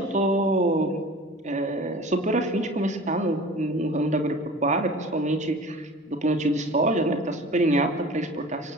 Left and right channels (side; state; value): both; normal; correlation 0.41